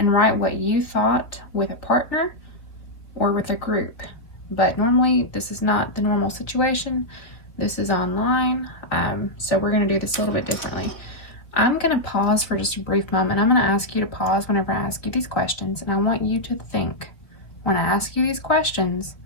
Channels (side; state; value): right; late; 3.6 ms